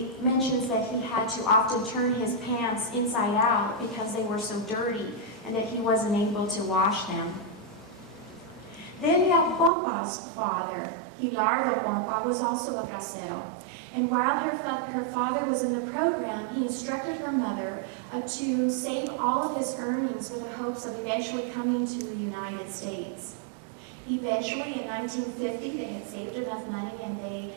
mentions that he had to often turn his pants inside out because they were so dirty and that he wasn't able to wash them. Delia Pompa's father, Hilardo Pompa, was also a bracero. And while her father was in the program, he instructed her mother to save all of his earnings with the hopes of eventually coming to the United States. Eventually, in 1950, they had saved enough money and they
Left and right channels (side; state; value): left; drops out; at 9.7 s